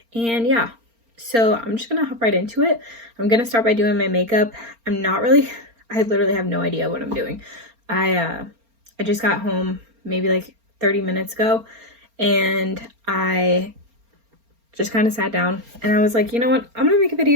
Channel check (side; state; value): left; late; 4.3 ms